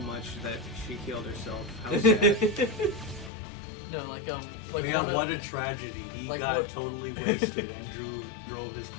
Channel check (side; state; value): right; drops out; at 3.3 s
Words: much that she killed herself. How sad. No, like Oh, yeah, one of- what a tragedy. He like got what- totally wasted and drove his